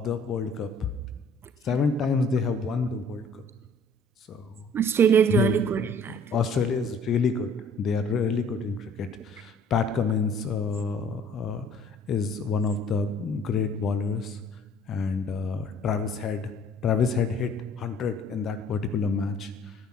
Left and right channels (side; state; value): both; normal; correlation 0.54